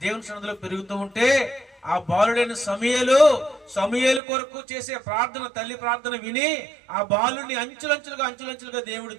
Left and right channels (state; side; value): drops out; left; at 4.2 s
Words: దేవుని సన్నిధిలో పెరుగుతూ ఉంటే ఆ బాలుడైన సమూయేలు కొరకు చేసే ప్రార్థన, తల్లి ప్రార్థన విని ఆ బాలుడిని అంచులంచులుగా దేవుడు